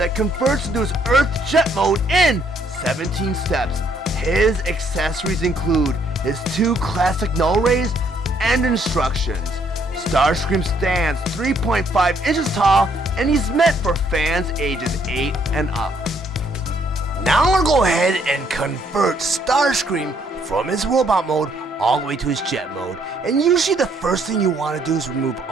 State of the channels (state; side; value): normal; both; correlation 0.68